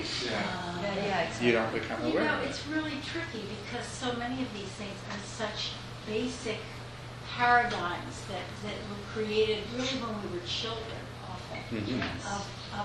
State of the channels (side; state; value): both; identical; correlation 1.00